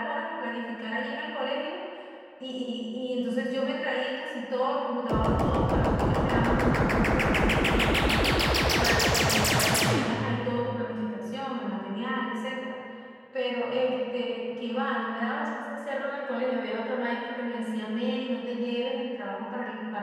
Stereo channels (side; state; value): both; identical; correlation 1.00